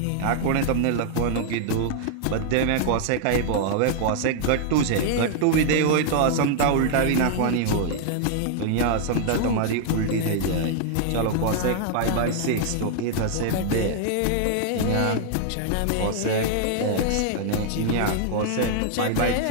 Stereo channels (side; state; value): both; different; correlation -0.01